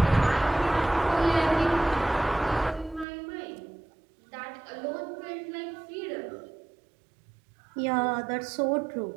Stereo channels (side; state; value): left; drops out; at 3.1 s